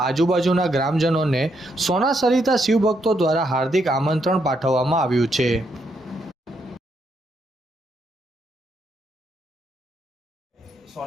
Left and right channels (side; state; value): both; normal; correlation 0.77